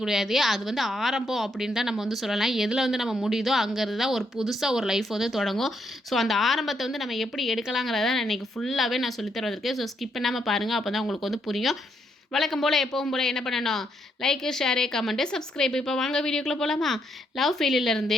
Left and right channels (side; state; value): both; normal; correlation 0.76